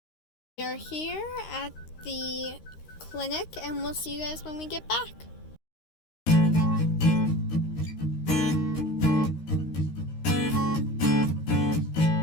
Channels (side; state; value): right; late; 13 ms